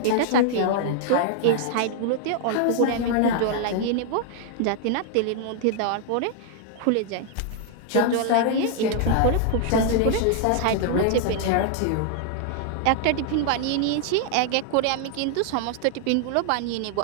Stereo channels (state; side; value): different; both; correlation 0.00